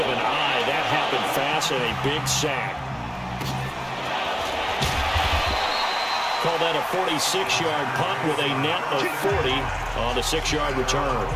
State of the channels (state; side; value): identical; both; correlation 1.00